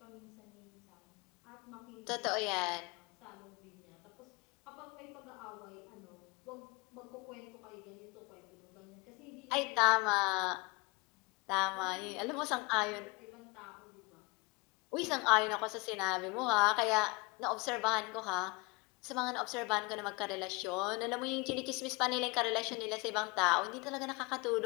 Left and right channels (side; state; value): right; quieter; 26.0 dB